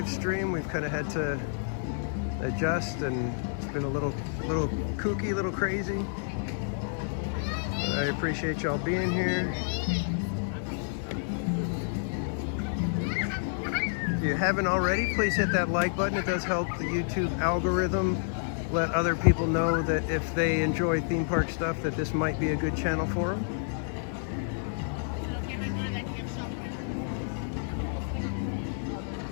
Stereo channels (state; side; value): silent; right; digital silence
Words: stream. We've kind of had to adjust, and it's been a little kooky, a little crazy. I appreciate y'all being here. If you haven't already, please hit that like button. It does help the YouTube algorithm let other people know that if they enjoy theme park stuff, that this might be a good channel for them.